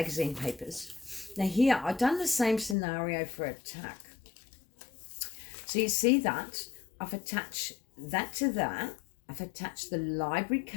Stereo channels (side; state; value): right; drops out; at 2.8 s